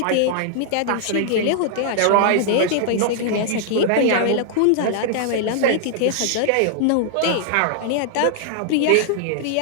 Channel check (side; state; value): both; different; correlation 0.00